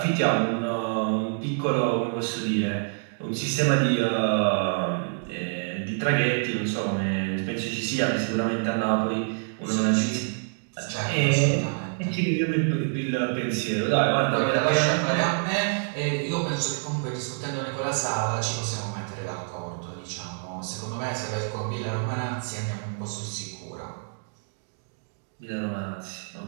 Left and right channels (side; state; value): left; silent; 60 dB below the other